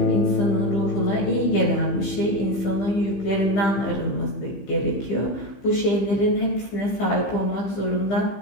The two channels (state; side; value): late; right; 15 ms